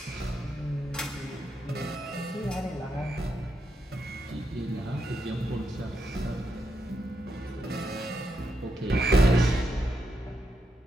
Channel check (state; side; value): normal; both; correlation 0.83